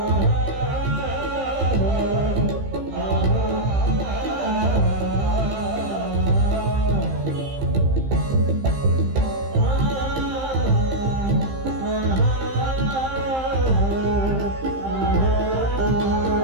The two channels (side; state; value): left; late; 15 ms